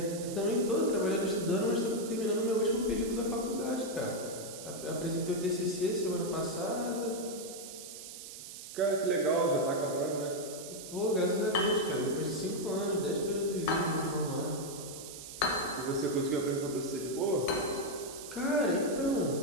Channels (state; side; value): noise; right; hiss, 12 dB below the sound